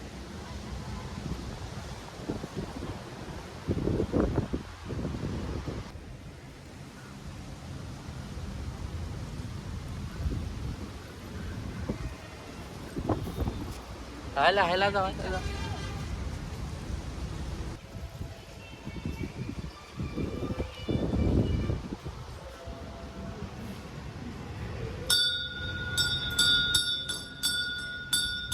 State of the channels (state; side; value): identical; both; correlation 1.00